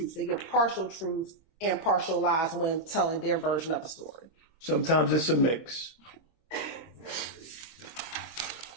they give partial truths and partial lies when telling their version of a story? Sometimes it's a mix.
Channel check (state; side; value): late; right; 25 ms